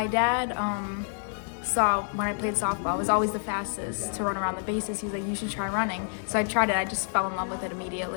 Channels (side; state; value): right; silent; 59 dB below the other